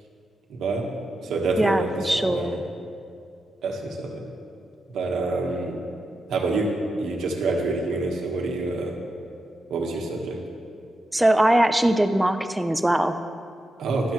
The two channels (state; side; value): normal; both; correlation 0.88